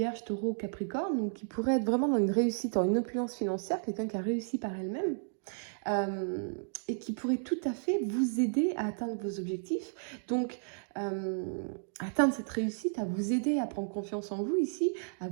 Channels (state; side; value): silent; left; digital silence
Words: Taureau, Capricorne, donc qui pourrait être vraiment dans une réussite, dans une opulence financière, quelqu'un qui a réussi par elle-même. Et qui pourrait tout à fait vous aider à atteindre vos objectifs. Donc, atteindre cette réussite, à vous aider à prendre confiance en vous ici, à